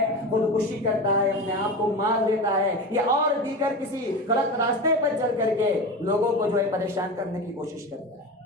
خودکشی کرتا ہے، اپنے آپ کو مار دیتا ہے، یا اور دیگر کسی غلط راستے پر چل کر کے لوگوں کو جو ہے پریشان کرنے کی کوشش کرتا ہے۔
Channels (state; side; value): normal; both; correlation 0.26